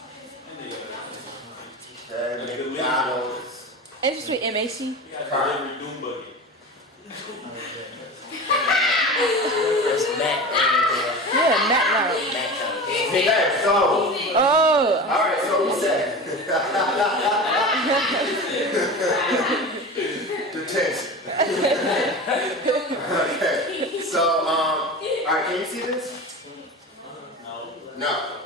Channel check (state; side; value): normal; both; correlation 0.31